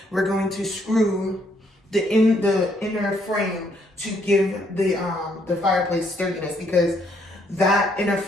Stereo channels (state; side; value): normal; both; correlation 0.70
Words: we're going to screw the inner frame to give the fireplace sturdiness, because that inner